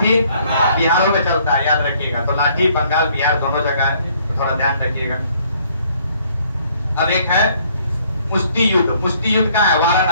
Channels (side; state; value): both; inverted; correlation -0.63